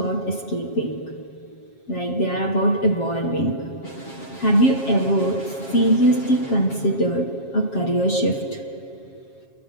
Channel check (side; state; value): right; late; 7.4 ms